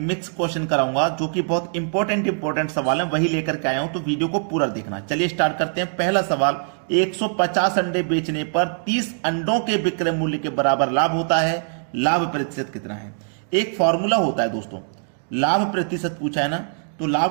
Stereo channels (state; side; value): silent; left; digital silence